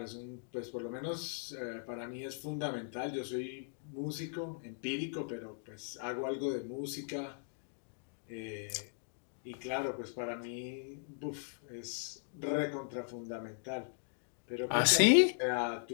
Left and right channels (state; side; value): silent; right; digital silence